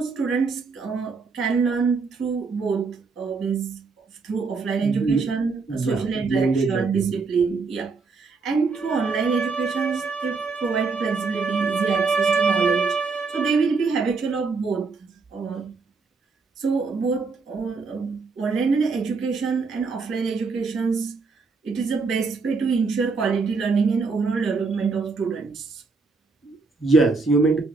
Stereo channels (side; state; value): left; quieter; 4.5 dB